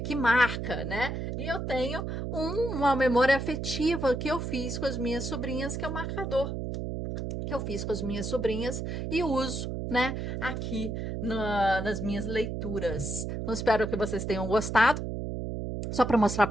que marca, né? E eu tenho uma memória afetiva que eu fiz com as minhas sobrinhas, que é o marcador que eu fiz com as minhas sobrinhas e uso, né, aqui nas minhas leituras. Então, espero que vocês tenham gostado. Só para mostrar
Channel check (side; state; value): right; noise; hum, 4 dB below the sound